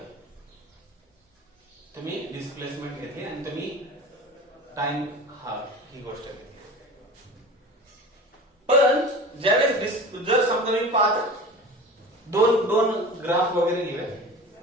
तुम्ही डिस्प्लेसमेंट घेतली आणि तुम्ही टाइम हा ही गोष्ट घेतली. पण ज्यावेळेस जर समजा मी दोन ग्राफ वगैरे घेऊया,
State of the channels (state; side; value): normal; both; correlation 0.36